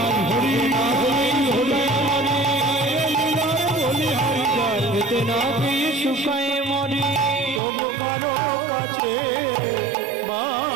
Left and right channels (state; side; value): drops out; left; at 7.6 s